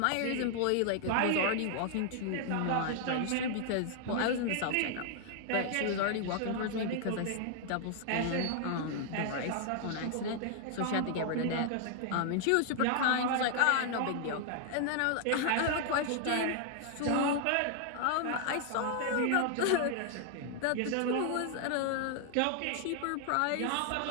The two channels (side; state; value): both; different; correlation 0.00